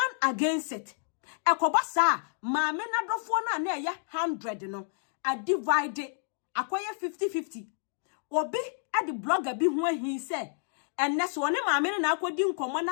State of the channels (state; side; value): silent; right; digital silence